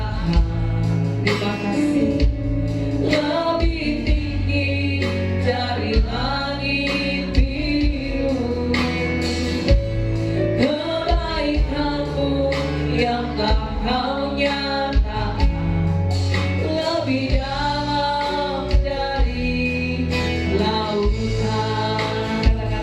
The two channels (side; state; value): both; identical; correlation 1.00